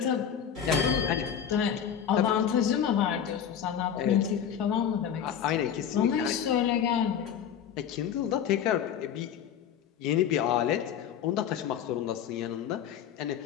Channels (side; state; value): right; quieter; 8.7 dB